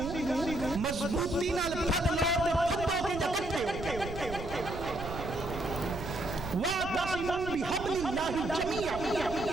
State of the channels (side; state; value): right; noise; rumble, 9 dB below the sound